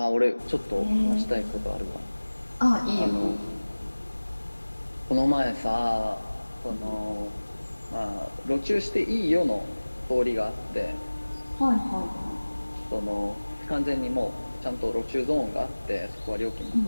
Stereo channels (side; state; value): both; inverted; correlation -1.00